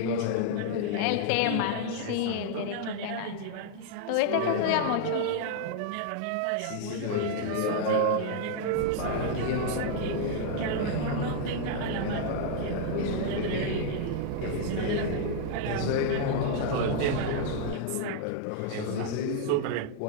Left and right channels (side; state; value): both; different; correlation -0.01